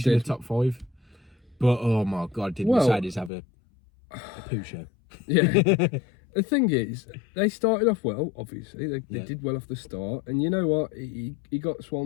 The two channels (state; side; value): drops out; right; at 3.3 s